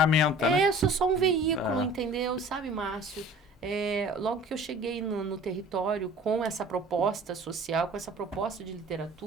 né? Eu sou só um veículo, entendeu? Sabe, Márcio? Logo que eu cheguei no território com essa proposta social, com essa proposta de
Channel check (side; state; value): both; normal; correlation 0.46